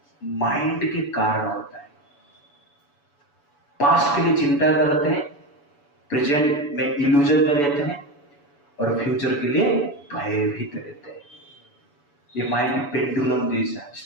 माइंड के कारण होता है। पास्ट के लिए चिंता करते हैं, प्रेजेंट में इल्यूजन में रहते हैं, और फ्यूचर के लिए भयभीत रहते हैं। ये माइंड पेंडुलम जैसा है,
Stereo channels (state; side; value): late; right; 7.0 ms